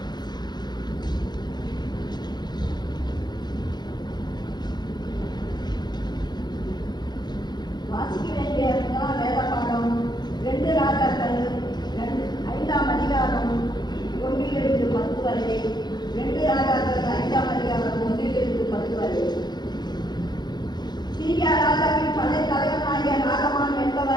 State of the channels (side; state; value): right; late; 0.21 ms